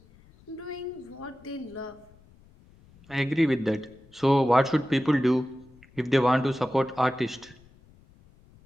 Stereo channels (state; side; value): noise; left; rumble, 27 dB below the sound